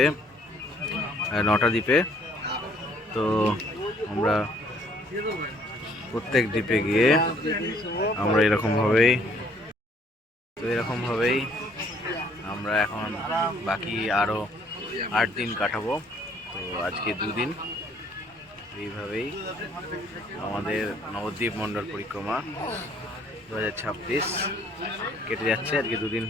9টা দ্বীপে। তো আমরা প্রত্যেক দ্বীপে গিয়ে আমরা এরকমভাবেই আমরা এখন বাকি আরও 8 দিন কাটাবো। তো আজকে 2 দিন এইভাবেই আমাদের নবদ্বীপ মণ্ডল পরিক্রমা 2026 কেটে যাচ্ছে। আজকে 2 দিন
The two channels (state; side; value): normal; both; correlation 0.62